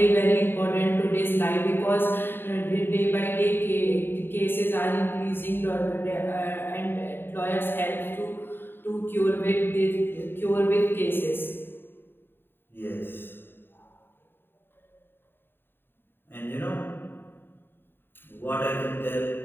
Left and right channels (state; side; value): late; right; 0.10 ms